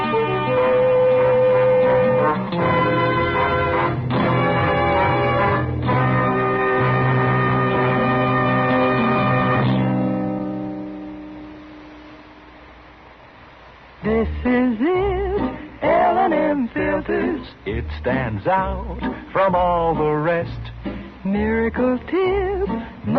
stands out from all the rest. Miracle Tip,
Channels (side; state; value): both; identical; correlation 1.00